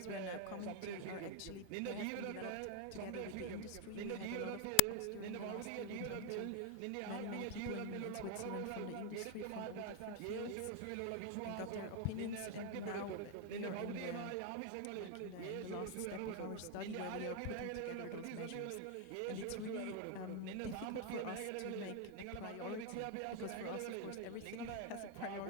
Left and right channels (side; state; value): both; different; correlation 0.01